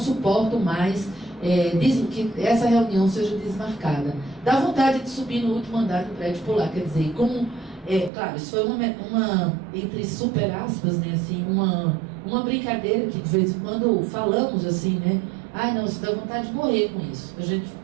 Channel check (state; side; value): drops out; left; at 8.1 s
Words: mais que essa reunião seja desmarcada. Dá vontade de subir no último andar do prédio e pular. Quer dizer, como... claro, isso foi uma entre super aspas, né, assim, uma brincadeira que de vez em quando falamos assim, né? Não, você dá vontade de morrer com isso.